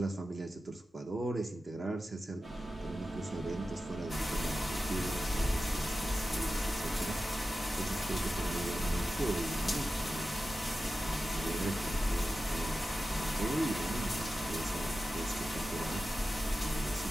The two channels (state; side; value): normal; both; correlation 0.93